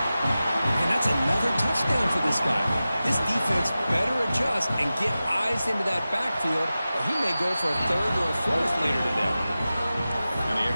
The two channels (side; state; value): both; inverted; correlation -0.95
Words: And that's another touchdown for this guy. This defense better adjust and get eyes into that backfield, or he may go for a 3rd or a 4th later today. And the